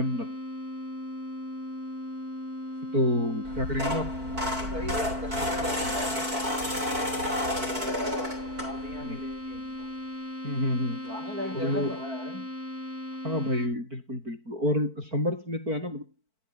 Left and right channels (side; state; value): left; late; 4.5 ms